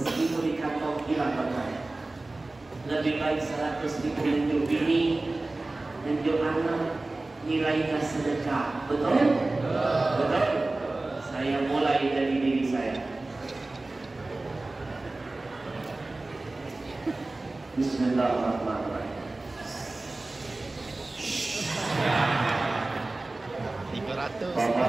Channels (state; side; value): quieter; left; 3.0 dB